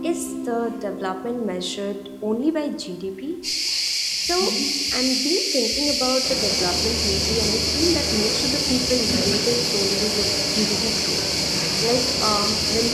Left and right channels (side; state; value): both; identical; correlation 1.00